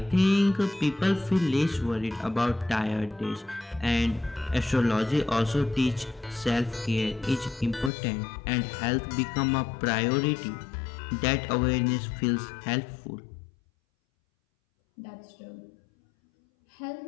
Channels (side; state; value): right; drops out; at 7.9 s